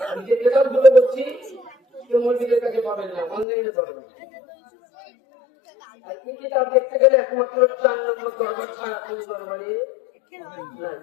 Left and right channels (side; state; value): right; drops out; at 3.5 s